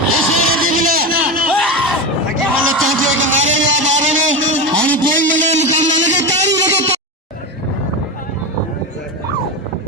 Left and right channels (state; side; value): normal; both; correlation 0.18